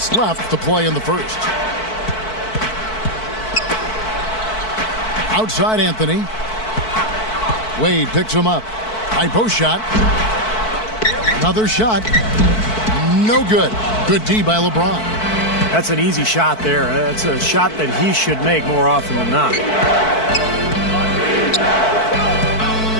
left to play in the first. Outside Anthony. Wade picks him up. High post shot. Another shot. No good. Good D by LeBron. That's an easy shot there. That's a shot that he should make more often than not.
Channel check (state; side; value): late; right; 4.6 ms